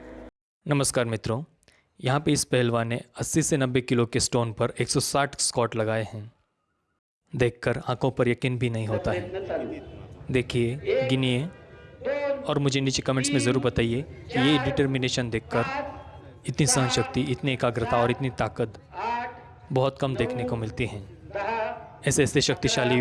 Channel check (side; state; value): both; identical; correlation 1.00